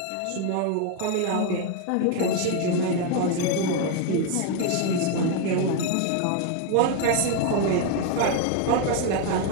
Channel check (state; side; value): different; both; correlation 0.01